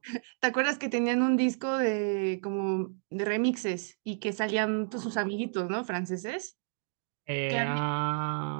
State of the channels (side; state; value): left; silent; digital silence